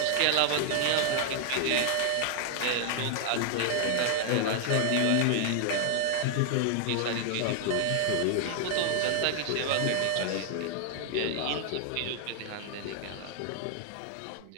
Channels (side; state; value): both; different; correlation 0.00